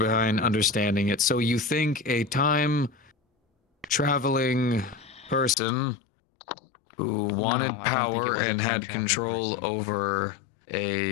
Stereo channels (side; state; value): right; drops out; at 5.6 s